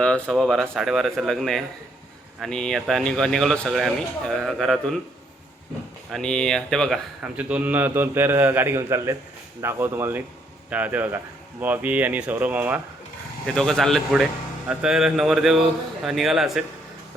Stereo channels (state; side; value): normal; both; correlation 0.70